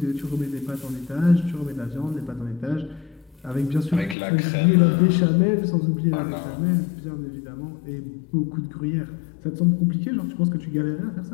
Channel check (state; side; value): drops out; right; at 4.2 s